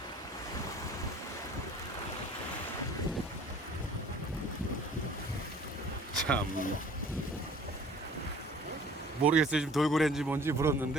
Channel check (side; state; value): both; normal; correlation 0.50